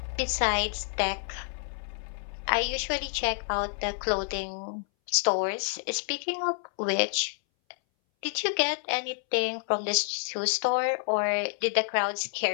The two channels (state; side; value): silent; right; 59 dB below the other